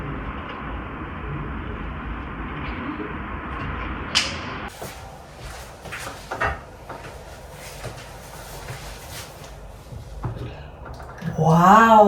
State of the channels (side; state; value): both; identical; correlation 1.00